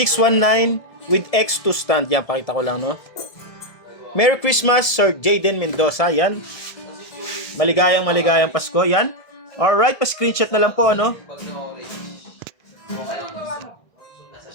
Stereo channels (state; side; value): late; right; 1.6 ms